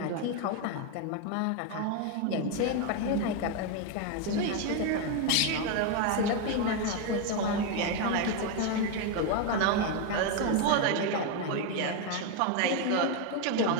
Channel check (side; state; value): both; different; correlation 0.01